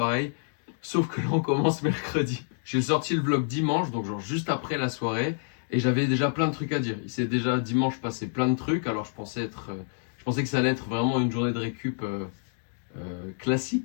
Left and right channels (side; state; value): right; silent; digital silence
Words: sauf que là on commence mercredi. J'ai sorti le vlog dimanche, donc genre juste après la soirée, et j'avais déjà plein de trucs à dire. Il s'est déjà dimanche passé plein de trucs, alors je pensais que ça allait être vraiment une journée de récup